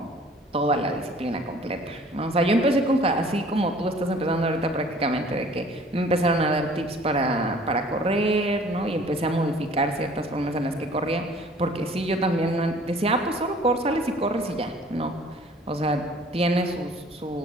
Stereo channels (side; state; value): both; normal; correlation 0.52